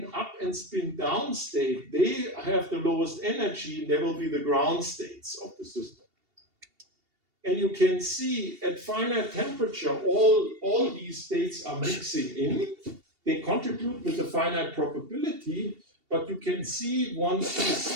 up and spin down state, they have the lowest energy, and they will be the ground states of the system. And you can see at finite temperature, all these states are mixing in. They contribute with a finite probability, but you can see once you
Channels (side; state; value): left; late; 2.7 ms